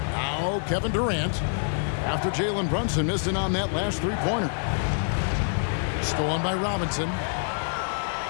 Kevin Durant. after Jalen Brunson missed it on that last three-pointer. Stolen by Robinson.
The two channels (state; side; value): silent; right; 59 dB below the other